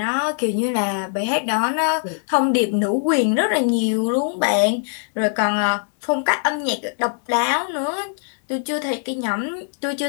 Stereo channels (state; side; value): silent; right; 65 dB below the other